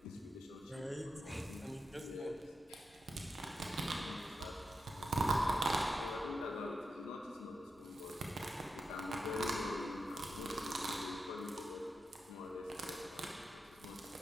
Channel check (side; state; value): both; normal; correlation 0.88